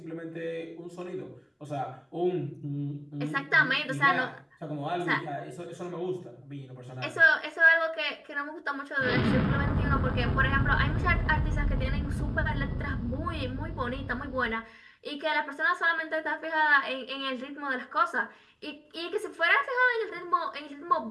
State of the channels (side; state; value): both; identical; correlation 1.00